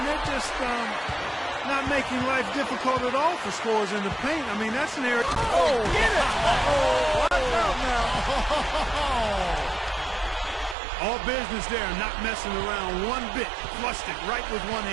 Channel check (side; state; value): left; drops out; at 10.8 s